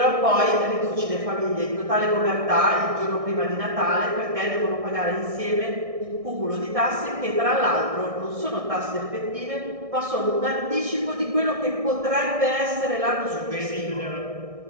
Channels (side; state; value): left; late; 1.6 ms